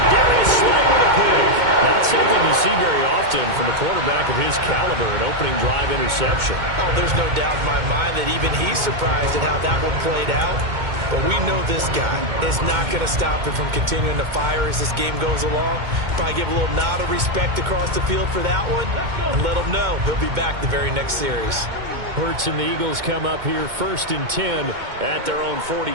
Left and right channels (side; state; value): left; late; 2.2 ms